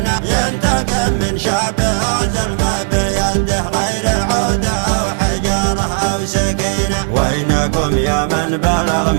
ينتقم من شعبه ظلمه بيده غير عودة أو حجارة أو سكينة. وينكم يا من بلغ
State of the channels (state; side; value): silent; left; digital silence